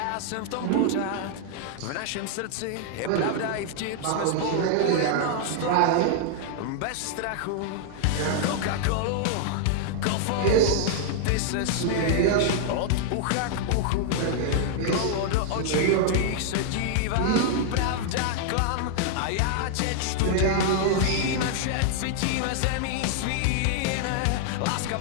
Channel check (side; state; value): both; different; correlation -0.01